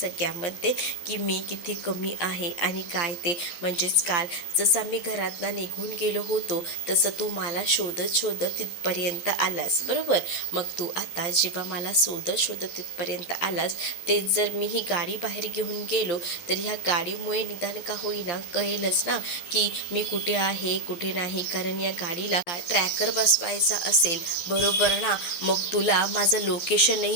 की मी किती कमी आहे आणि काय ते. म्हणजेच काल जसा मी घरातनं निघून गेलो होतो तसं तू मला शोधत शोधत तिथपर्यंत आलास, बरोबर? मग तू आता जेव्हा मला शोधत शोधत तिथपर्यंत आलास तेच जर मी ही गाडी बाहेर घेऊन गेलो तर ह्या गाडीमुळे निदान का होईना कळेलच ना की मी कुठे आहे कुठे नाही. कारण या गाडीला ट्रॅकर बसवायचा असेल, बरोबर ना? मग तुला माझं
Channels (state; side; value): late; right; 12 ms